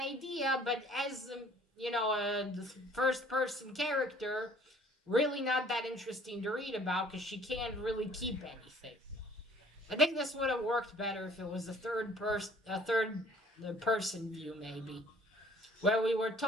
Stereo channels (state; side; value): normal; both; correlation 0.55